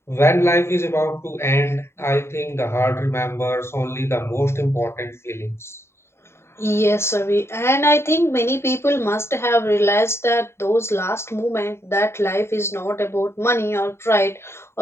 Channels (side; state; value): right; late; 0.12 ms